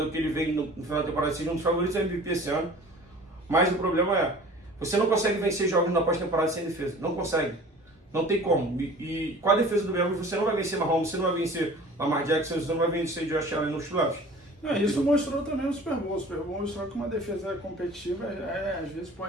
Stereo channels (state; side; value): normal; both; correlation 0.44